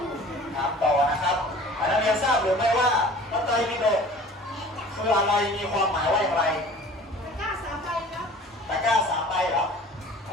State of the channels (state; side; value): normal; both; correlation 0.45